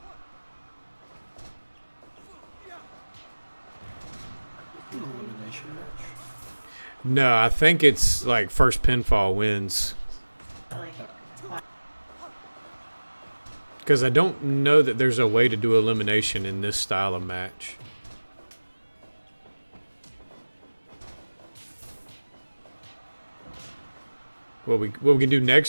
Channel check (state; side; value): inverted; both; correlation -1.00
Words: Elimination match. No, I think it's like first pinfall wins. Because I don't know that there's a way to do elimination in this style of match. What we can do